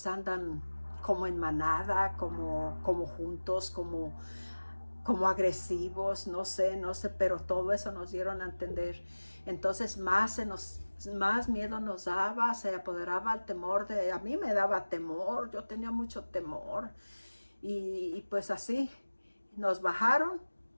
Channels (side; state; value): both; inverted; correlation -1.00